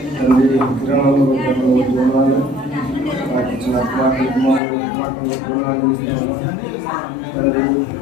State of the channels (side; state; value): right; drops out; at 4.6 s